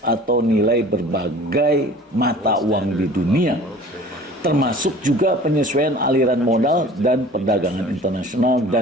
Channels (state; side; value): normal; both; correlation 0.45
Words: atau nilai berbagai mata uang di dunia, termasuk juga penyesuaian aliran modal dan perdagangan internasional